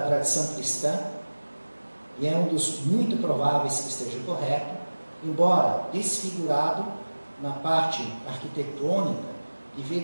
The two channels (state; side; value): inverted; both; correlation -1.00